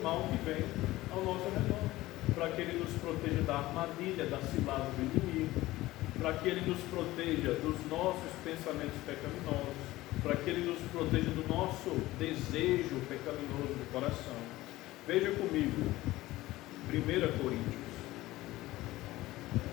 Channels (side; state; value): right; quieter; 17.5 dB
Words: mal que vem ao nosso redor, para que Ele nos proteja da armadilha, da cilada do inimigo, para que Ele nos proteja dos nossos pensamentos pecaminosos, para que Ele nos proteja do nosso desejo pecaminoso do coração. Veja comigo, 1 Coríntios,